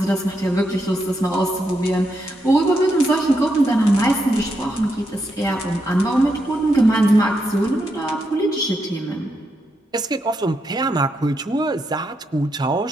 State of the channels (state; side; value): normal; both; correlation 0.82